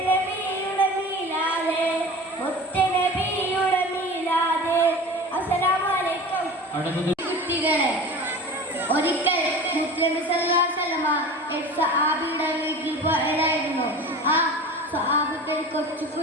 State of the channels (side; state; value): both; normal; correlation 0.35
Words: മീലാദ് മുത്തനബിയുടെ മീലാദ്. അസ്സലാമു അലൈക്കും. കുട്ടികളെ, ഒരിക്കൽ മുസ്ലിം സഹാബിയുടെ വീട്ടിൽ പോയതായിരുന്നു. ആ സഹാബത്തിൽ കൊച്ചു